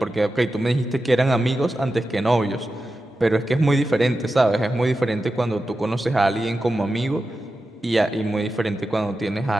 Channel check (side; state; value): both; normal; correlation 0.92